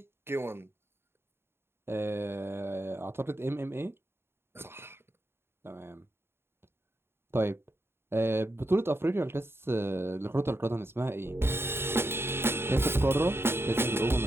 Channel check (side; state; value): left; late; 0.11 ms